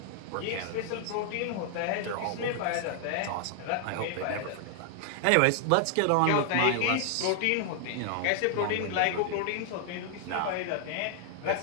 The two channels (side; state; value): both; different; correlation 0.00